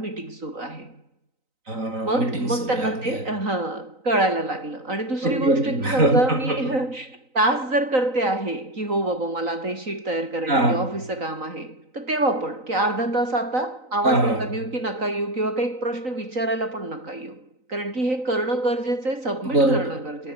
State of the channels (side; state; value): left; late; 3.9 ms